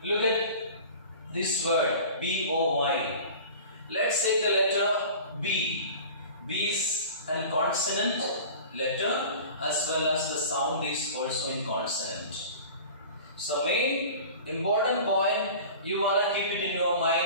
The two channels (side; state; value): both; inverted; correlation -0.40